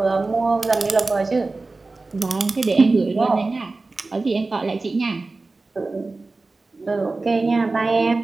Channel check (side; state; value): left; quieter; 3.5 dB